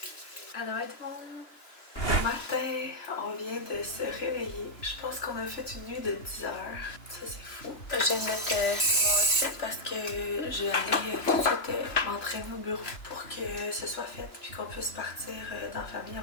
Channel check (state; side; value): late; right; 2.9 ms